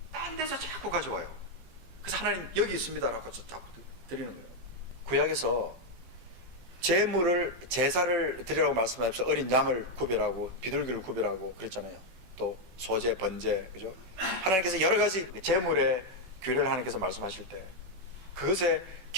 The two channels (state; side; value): late; left; 16 ms